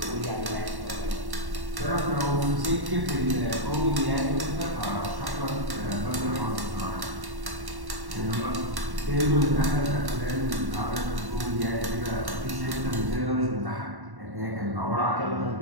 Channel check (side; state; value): left; late; 1.1 ms